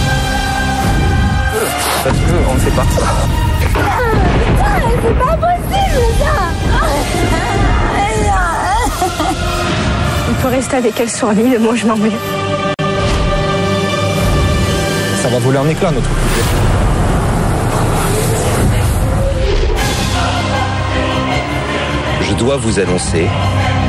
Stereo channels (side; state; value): both; identical; correlation 1.00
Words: Parce qu'on ne fait pas ça. C'est pas possible ça. Il peut rester avec elle sur l'île, moi je m'en vais. Ça va voler en éclats notre couple. Je dois vous annoncer,